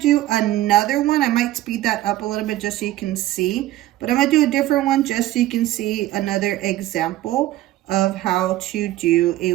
another one. I might speed that up a little bit just so you can see, but I'm gonna do a different one just so you can see another example of how to do a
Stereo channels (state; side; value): quieter; left; 15.2 dB